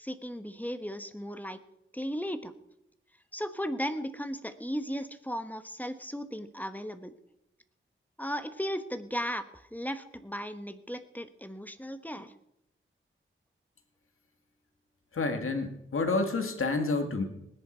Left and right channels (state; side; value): normal; both; correlation 0.57